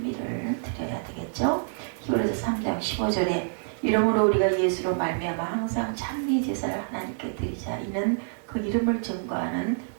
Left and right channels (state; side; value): silent; left; 60 dB below the other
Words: 드려야 되겠죠. 히브리서 3장 15절에 이러므로 우리가 예수로 말미암아 항상 찬미 제사를 하나님께 드리자. 이는 그 이름을 증거하는